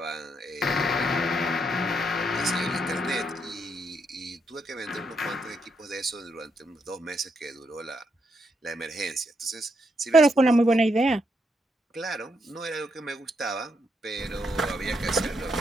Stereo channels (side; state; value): both; normal; correlation 0.78